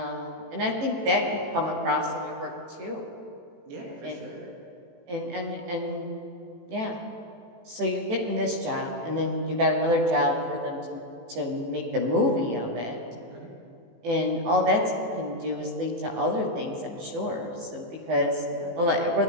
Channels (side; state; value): left; late; 18 ms